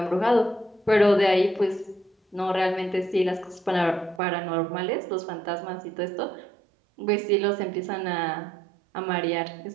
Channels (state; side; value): drops out; left; at 4.2 s